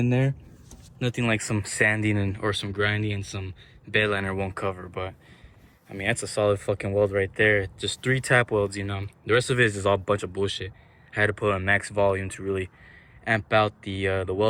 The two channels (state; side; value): identical; both; correlation 1.00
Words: there. Nothing like some sanding or some grinding and some bed liner won't cover. But I mean, that's a solid fucking weld right there. Just 3 tap welds, you know. The rest of it is just all a bunch of bullshit. I had to put on max volume to really amp out the